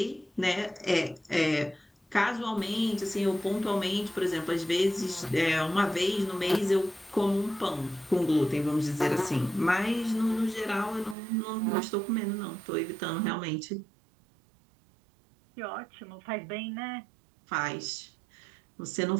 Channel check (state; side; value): drops out; left; at 11.2 s